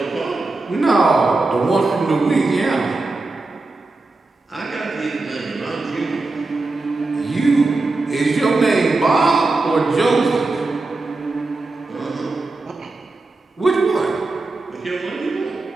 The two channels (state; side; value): quieter; left; 3.3 dB